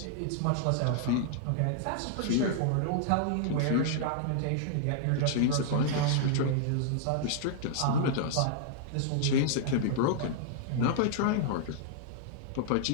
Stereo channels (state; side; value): different; both; correlation -0.01